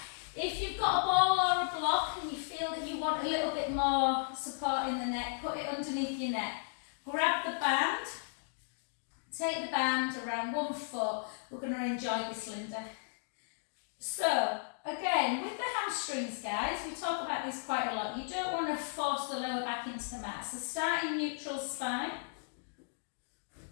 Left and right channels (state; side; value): silent; right; digital silence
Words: If you've got a ball or a block and you feel that you want a little bit more support in the neck, put it underneath your neck. Grab the band, take the band around 1 foot. We're going to enjoy this, Linda. So, again, with the hamstrings, guys, we talk about this quite a lot. You don't want to force the lower back into the mat. So start in neutral spine.